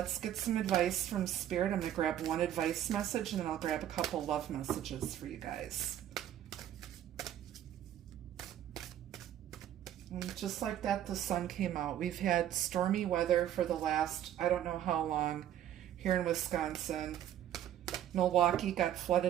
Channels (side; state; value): left; quieter; 11.3 dB